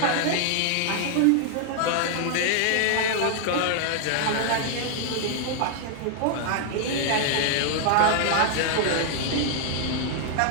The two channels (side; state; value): both; different; correlation 0.00